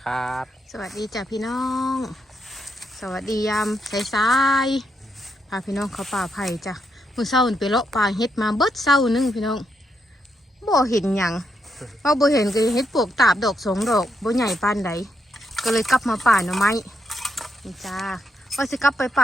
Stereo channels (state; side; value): normal; both; correlation 0.80